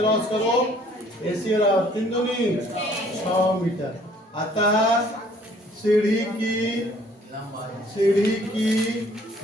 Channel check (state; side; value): normal; both; correlation 0.59